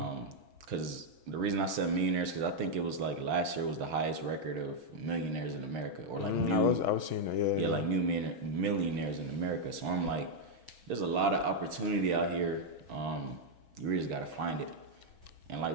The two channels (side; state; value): left; late; 6.2 ms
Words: Because the reason I said millionaires, because I think it was like last year was the highest record of millionaires in America, or like I was seeing that, yeah, like new millionaires in America. So I'm like, there's a lot of opportunity out here. You really just gotta find it. And like